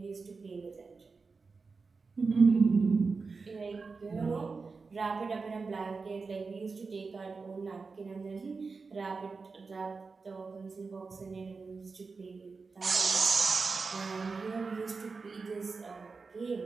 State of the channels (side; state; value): left; quieter; 4.5 dB